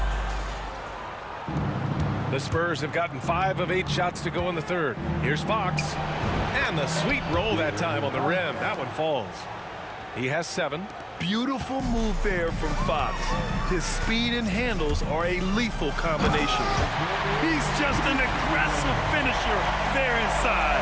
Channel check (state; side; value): identical; both; correlation 1.00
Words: The Spurs have gotten 5 of 8 shots to go in the third. Here's Fox. And the sweet roll that time on the rim. That one falls. He has 7. Beautiful move there from Fox. His speed and handles are a lethal combination. He's just an aggressive finisher there inside.